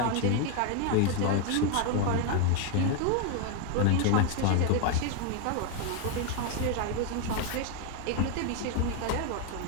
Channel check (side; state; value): both; different; correlation 0.01